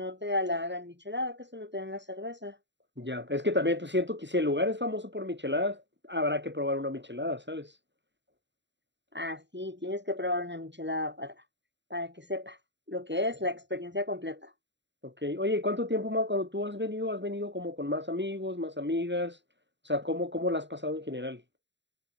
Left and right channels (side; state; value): left; late; 0.52 ms